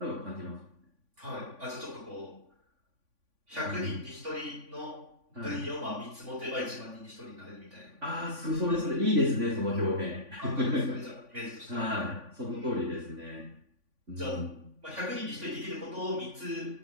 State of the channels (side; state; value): left; late; 3.5 ms